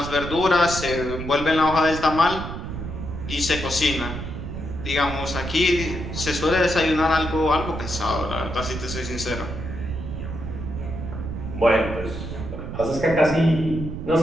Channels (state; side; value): noise; right; rumble, 7 dB below the sound